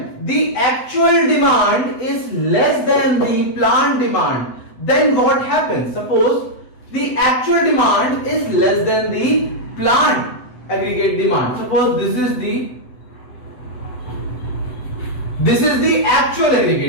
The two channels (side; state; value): right; late; 8.0 ms